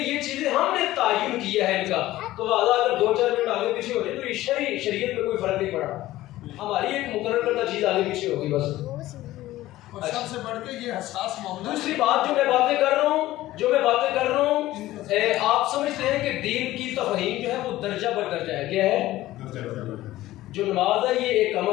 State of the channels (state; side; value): quieter; right; 15.9 dB